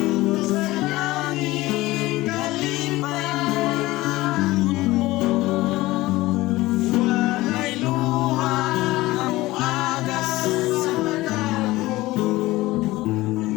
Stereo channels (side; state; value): right; quieter; 18.6 dB